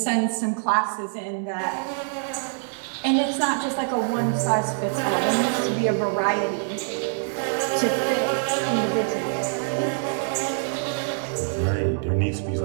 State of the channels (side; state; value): left; silent; digital silence